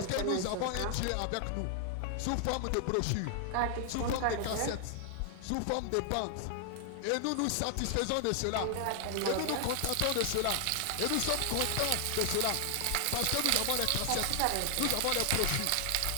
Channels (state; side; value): different; both; correlation 0.00